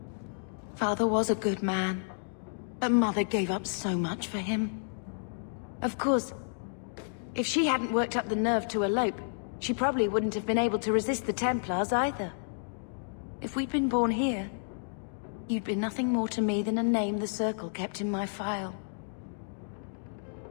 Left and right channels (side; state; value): right; silent; digital silence